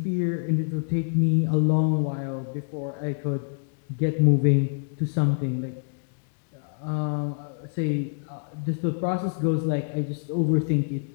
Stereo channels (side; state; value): right; silent; digital silence